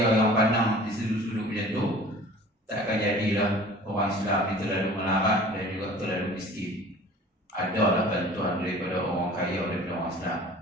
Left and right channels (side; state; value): both; normal; correlation 0.45